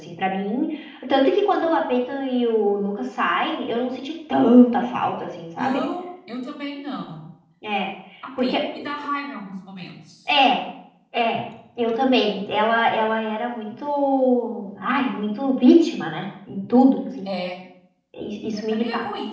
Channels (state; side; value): identical; both; correlation 1.00